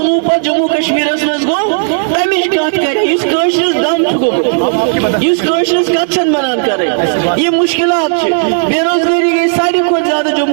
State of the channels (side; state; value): left; silent; digital silence